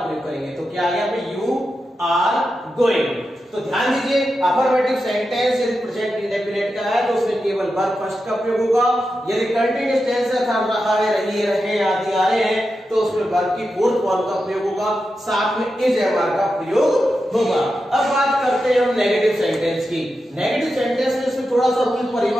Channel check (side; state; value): both; normal; correlation 0.89